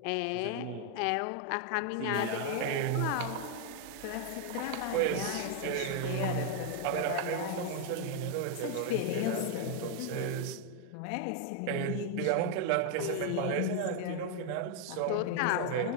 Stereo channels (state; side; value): different; both; correlation 0.00